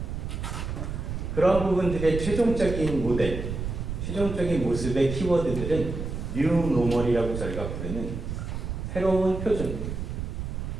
그런 부분들의 최종적인 모델, 최종적인 모습의 키워드들은 뉴 노멀이라고 저희가 부르는 새로운 표준,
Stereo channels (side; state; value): right; noise; rumble, 5 dB below the sound